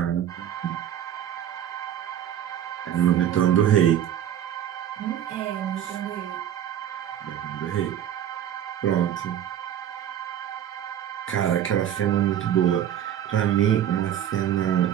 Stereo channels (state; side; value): quieter; left; 10.4 dB